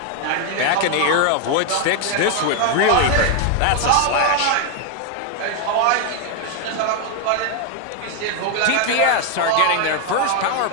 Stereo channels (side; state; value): both; different; correlation 0.01